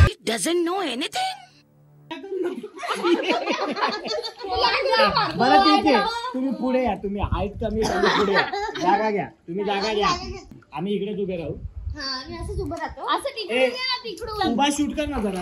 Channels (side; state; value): both; identical; correlation 1.00